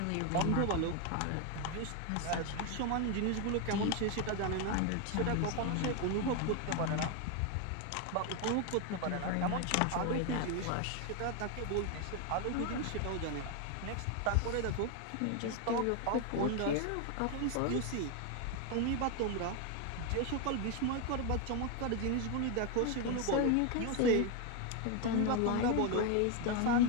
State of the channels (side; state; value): both; different; correlation 0.01